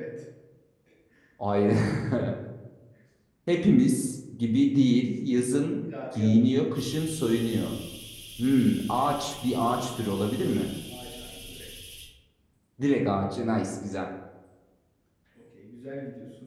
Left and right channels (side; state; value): both; identical; correlation 1.00